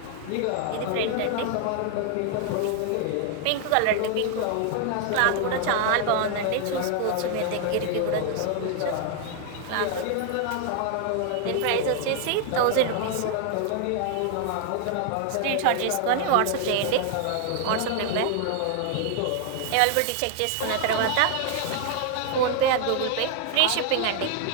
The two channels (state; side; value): different; both; correlation 0.00